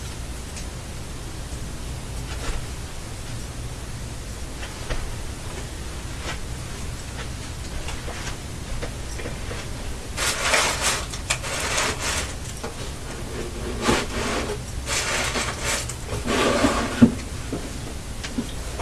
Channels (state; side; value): identical; both; correlation 1.00